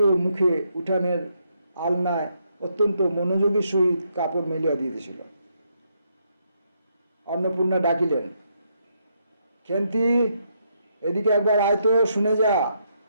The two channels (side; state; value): both; inverted; correlation -0.77